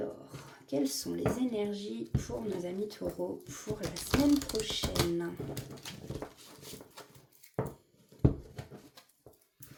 quelles sont les énergies pour nos amis taureaux pour la semaine prochaine?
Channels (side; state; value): both; identical; correlation 1.00